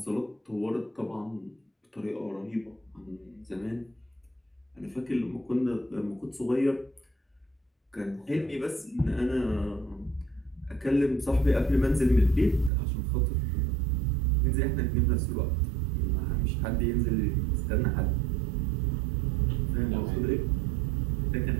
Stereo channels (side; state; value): left; drops out; at 12.7 s